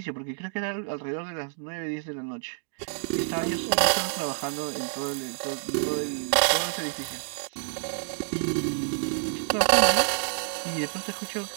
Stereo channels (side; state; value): left; silent; digital silence